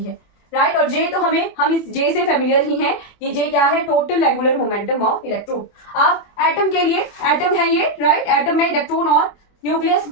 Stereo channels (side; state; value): right; late; 24 ms